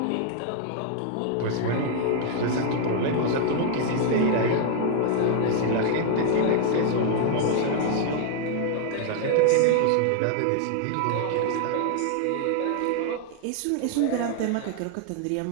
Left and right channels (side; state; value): both; different; correlation 0.00